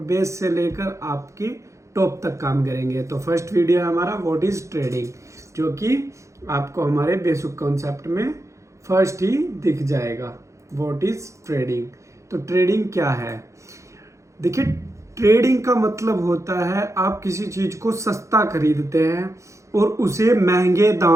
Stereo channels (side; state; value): left; late; 0.15 ms